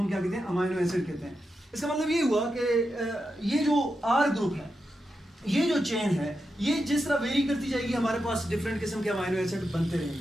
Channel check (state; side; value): normal; both; correlation 0.88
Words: क्या कहते हैं? अमाइनो एसिड कहते हैं। इसका मतलब ये हुआ कि ये जो R ग्रुप है, ये जो चेन है, ये जिस तरह वेरी करती जाएगी हमारे पास डिफरेंट किस्म के अमाइनो एसिड बनते